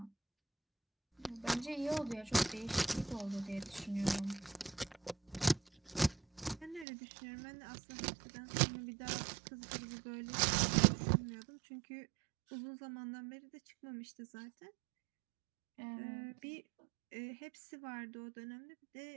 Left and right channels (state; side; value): drops out; left; at 6.9 s